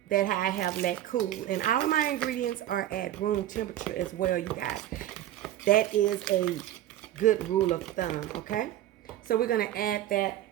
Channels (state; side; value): quieter; left; 13.0 dB